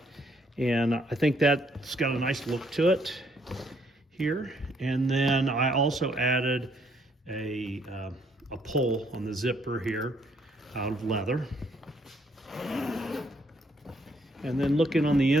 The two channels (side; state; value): both; normal; correlation 0.69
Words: and I think that's got a nice look to it here. And then I also added a pull on the zipper here out of leather. And then looking on the